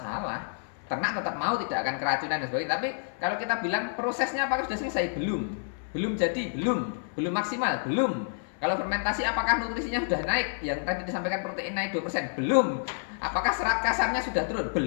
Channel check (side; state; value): right; silent; 59 dB below the other